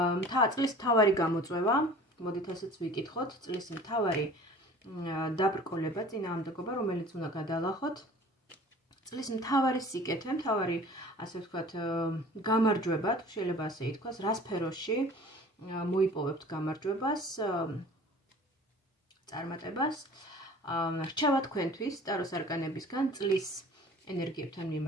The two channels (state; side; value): normal; both; correlation 0.45